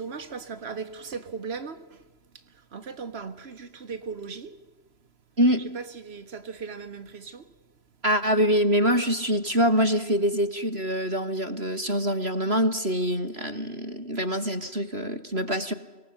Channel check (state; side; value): late; left; 3.0 ms